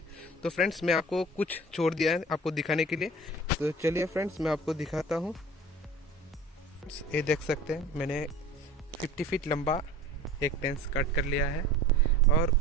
तो फ्रेंड्स, मैं आपको कुछ छोड़ दिया है आपको दिखाने के लिए। तो चलिए फ्रेंड्स, मैं आपको दिखाता हूँ। ये देख सकते हैं मैंने 50 फीट लंबा एक टेंस कट कर लिया है। और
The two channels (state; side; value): normal; both; correlation 0.41